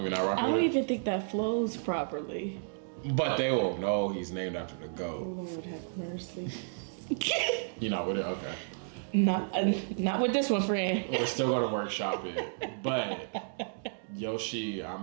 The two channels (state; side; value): silent; left; digital silence